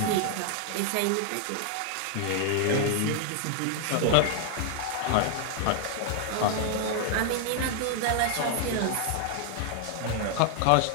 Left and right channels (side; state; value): both; different; correlation 0.00